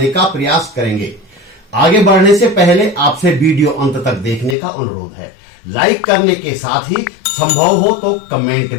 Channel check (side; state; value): right; drops out; at 4.5 s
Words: का प्रयास करेंगे। आगे बढ़ने से पहले आपसे वीडियो अंत तक देखने का अनुरोध है। लाइक करने के साथ ही संभव हो तो कमेंट